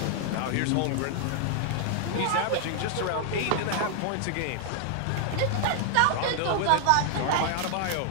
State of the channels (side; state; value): both; different; correlation 0.00